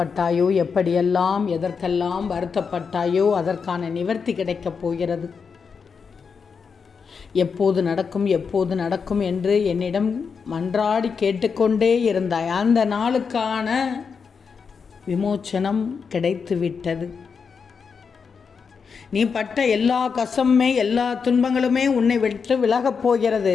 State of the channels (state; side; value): quieter; right; 5.8 dB